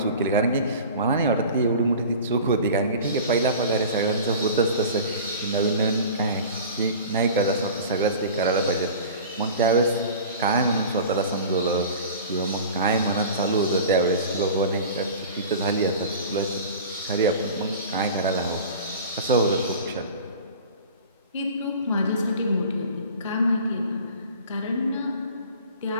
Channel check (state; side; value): inverted; both; correlation -0.39